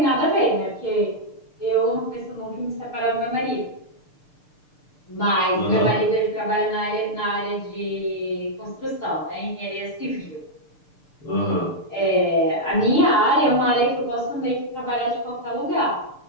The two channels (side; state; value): right; late; 6.7 ms